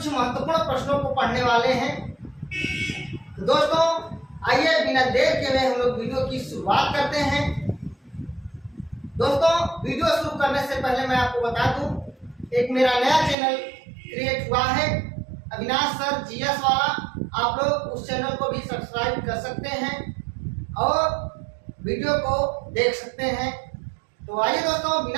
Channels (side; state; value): left; drops out; at 13.4 s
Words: महत्वपूर्ण प्रश्नों को पढ़ने वाले हैं। तो दोस्तों आइए बिना देर के हुए हम लोग वीडियो की शुरुआत करते हैं। दोस्तों वीडियो शुरू करने से पहले मैं आपको बता दूं, एक मेरा नया चैनल क्रिएट हुआ है, अविनाश सर जीएस वाला। आप लोग उस चैनल को भी सब्सक्राइब कर सकते हैं और वीडियो को देख सकते हैं। तो आइए दोस्तों